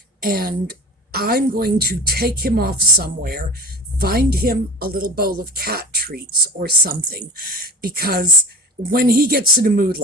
And I'm going to take him off somewhere, find him a little bowl of cat treats or something, because when he gets in a mood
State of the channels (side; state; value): both; normal; correlation 0.34